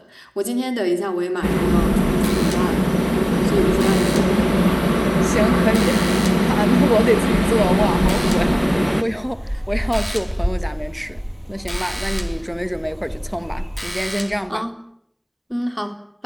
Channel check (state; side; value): identical; both; correlation 1.00